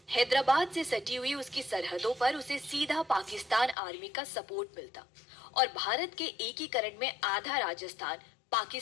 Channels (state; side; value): drops out; right; at 3.8 s